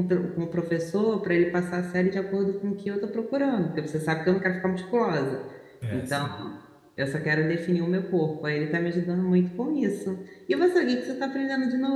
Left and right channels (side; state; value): both; identical; correlation 1.00